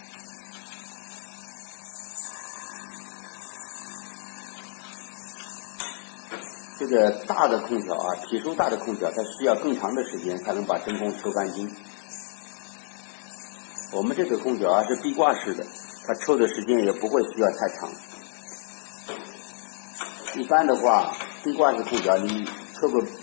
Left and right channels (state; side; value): silent; right; digital silence